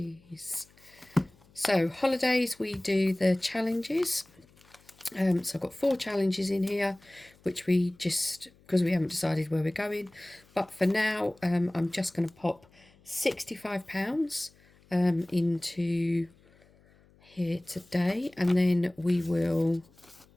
So holidays, we do the challenges. So I've got 4 challenges in here, which we just, because we haven't decided where we're going. But for now, I'm just going to pop £65 into here today, and then we will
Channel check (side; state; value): left; noise; hum, 29 dB below the sound